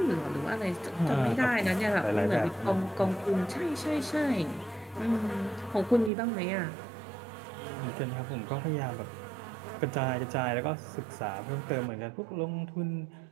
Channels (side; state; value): left; drops out; at 6.1 s